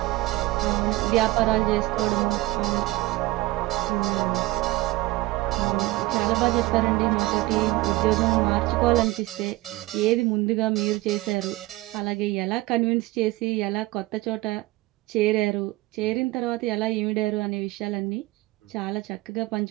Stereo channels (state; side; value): quieter; left; 19.2 dB